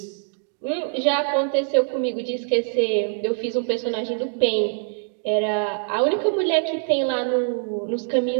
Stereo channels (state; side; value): silent; left; digital silence